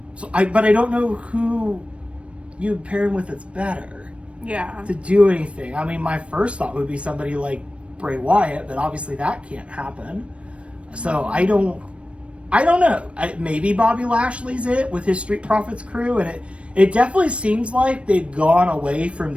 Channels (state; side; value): late; left; 0.061 ms